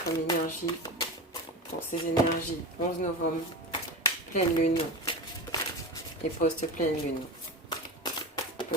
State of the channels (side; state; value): both; normal; correlation 0.25